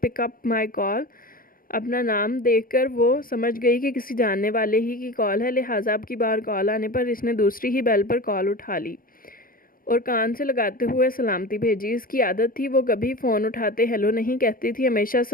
pickup my call. अपना नाम देखकर वो समझ गई कि किसी जानने वाले ही की कॉल है, लिहाजा अब की बार कॉल आने पर इसने दूसरी ही बेल पर कॉल उठा ली और कान से लगाते हुए सलामती भेजी। इसकी आदत थी, वो कभी फ़ोन उठाते हेलो नहीं कहती थी, हमेशा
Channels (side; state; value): right; late; 0.41 ms